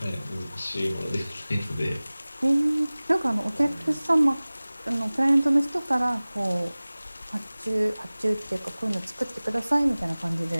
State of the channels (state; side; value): inverted; both; correlation -0.99